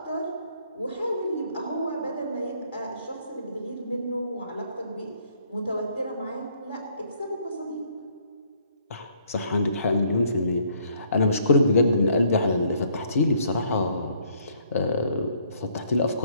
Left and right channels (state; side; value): inverted; both; correlation -0.65